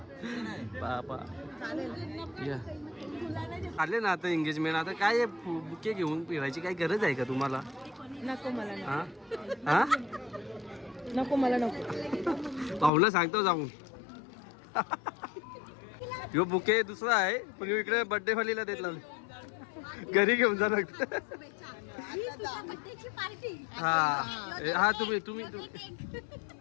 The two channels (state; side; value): drops out; right; at 12.9 s